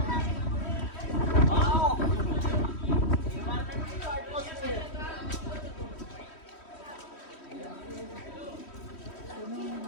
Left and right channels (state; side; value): late; right; 3.1 ms